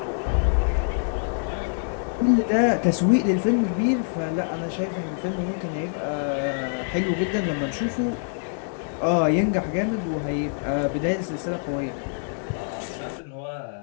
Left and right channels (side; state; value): right; silent; 62 dB below the other